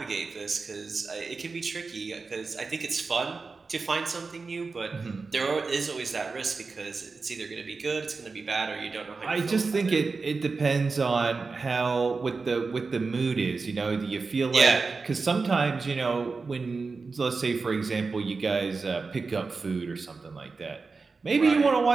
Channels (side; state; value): left; quieter; 4.3 dB